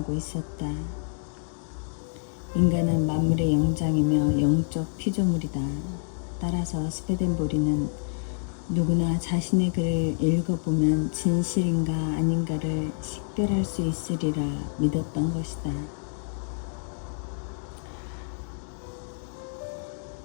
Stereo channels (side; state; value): right; silent; digital silence